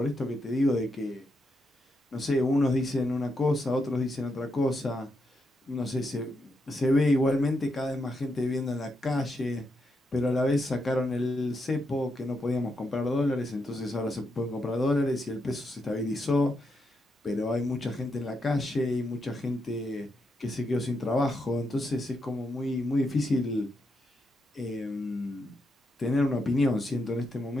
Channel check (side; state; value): both; normal; correlation 0.82